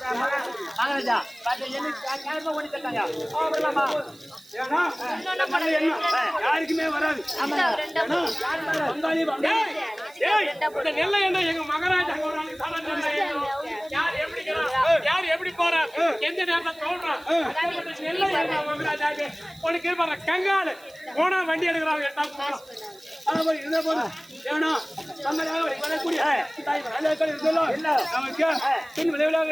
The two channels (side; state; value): right; noise; hiss, 25 dB below the sound